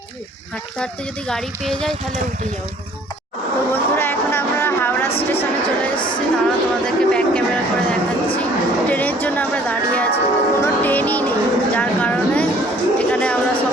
হাঁটতে হাঁটতে যদি গাড়ি পেয়ে যাই তাহলে উঠে যাবো। তো বন্ধুরা, এখন আমরা হাওড়া স্টেশনে চলে এসেছি। তারা তোমাদেরকে ব্যাক ক্যামেরা করে দেখাচ্ছি। ট্রেনের জন্য আমরা দাঁড়িয়ে আছি, কোনো ট্রেনই নেই, যার কারণে এখানে আমরা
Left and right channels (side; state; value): both; normal; correlation 0.56